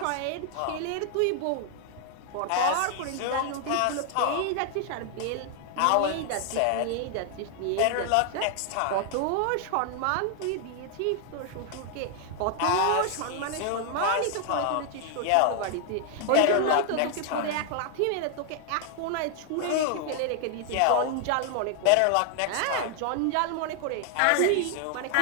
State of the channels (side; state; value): both; different; correlation 0.00